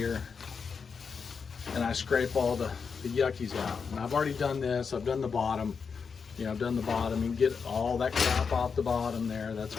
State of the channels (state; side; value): quieter; right; 5.7 dB